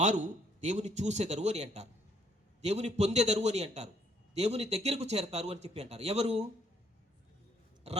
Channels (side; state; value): both; normal; correlation 0.66